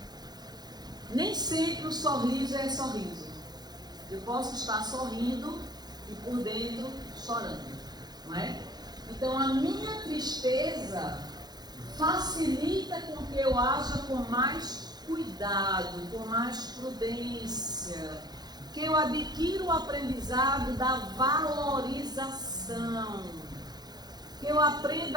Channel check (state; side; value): late; left; 0.20 ms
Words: Nem sempre o sorriso é sorriso. Eu posso estar sorrindo e por dentro chorando, não é? Então a minha tristeza facilita com que eu haja com mais cuidado, com mais prudência, que eu adquira o aprendizado da valorização, que eu